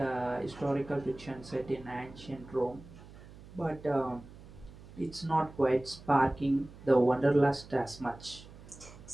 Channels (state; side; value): noise; right; hum, 18 dB below the sound